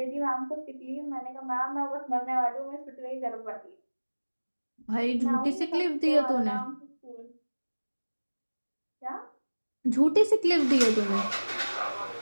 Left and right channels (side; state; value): both; inverted; correlation -1.00